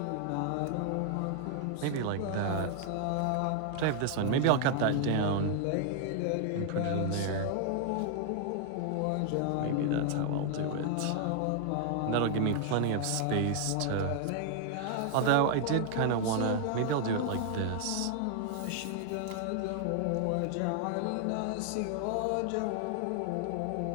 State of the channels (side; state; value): both; different; correlation 0.00